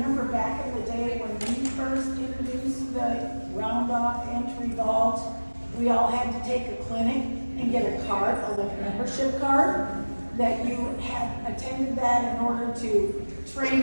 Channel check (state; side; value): inverted; both; correlation -1.00